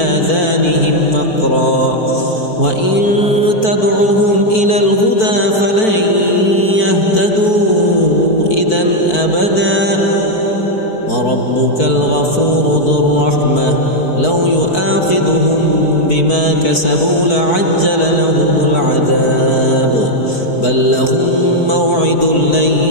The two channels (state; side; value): late; right; 4.5 ms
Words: وقرا وإن تدعهم إلى الهدى فلن يهتدوا إذا أبدا. وربك الغفور ذو الرحمة لو يؤاخذهم بما كسبوا لعجل لهم العذاب بل لهم موعد لن